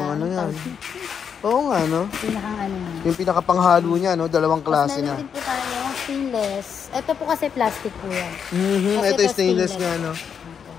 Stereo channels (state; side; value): quieter; right; 7.2 dB